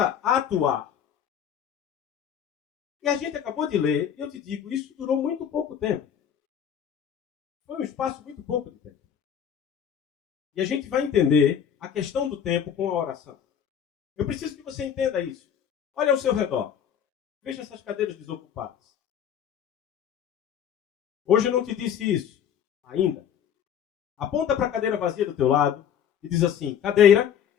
a atuar. E a gente acabou de ler, e eu te digo, isso durou muito pouco tempo. Foi um espaço muito pouco de tempo. E a gente vai entender a questão do tempo com a oração. Eu preciso que você entenda isso. Olha ao seu redor. Veja essas cadeiras desocupadas. Hoje eu não te disse isso ainda. Aponta para a cadeira vazia do teu lado e diz assim, cadeira,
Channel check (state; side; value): quieter; right; 8.8 dB